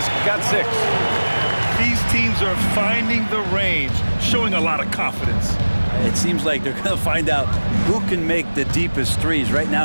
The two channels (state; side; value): inverted; both; correlation -1.00